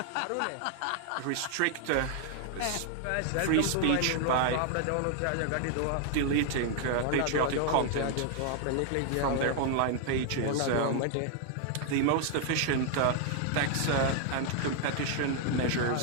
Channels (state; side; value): different; both; correlation 0.00